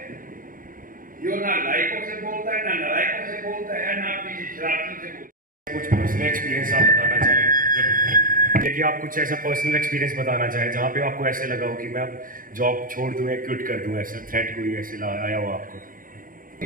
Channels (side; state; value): left; late; 0.40 ms